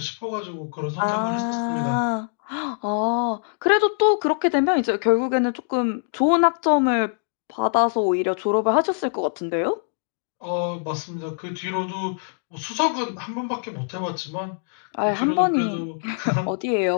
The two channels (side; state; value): right; silent; 59 dB below the other